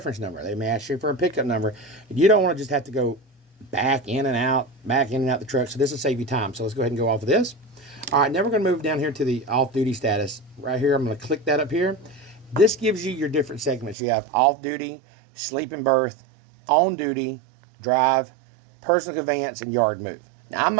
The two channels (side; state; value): left; drops out; at 14.0 s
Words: number. They may ask you for a pickup number. You don't want to just have to go back in and out the truck. So this will save you time. So let's go ahead and go off of this. All right, now we're going to move down here to the off-duty status. Right here, I'm going to click that up here. This gives you your different segments. You have off-duty, sleep and berth, on-duty, drive, personal conveyance, and yard move. Now, I'm